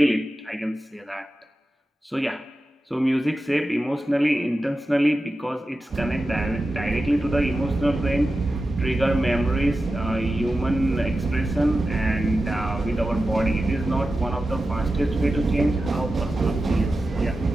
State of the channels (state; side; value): normal; both; correlation 0.93